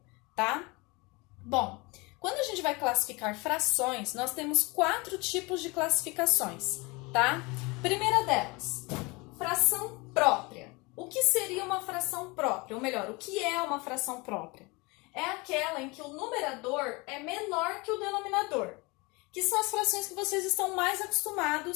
tá? Bom, quando a gente vai classificar frações, nós temos 4 tipos de classificações, tá? Primeira delas, fração própria. O que seria uma fração própria? Ou melhor, o que é uma fração própria? É aquela em que o numerador é menor que o denominador, que são as frações que vocês estão mais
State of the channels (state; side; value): quieter; right; 26.1 dB